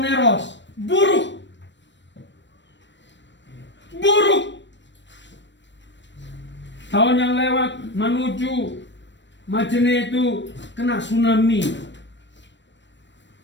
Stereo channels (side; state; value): right; late; 0.53 ms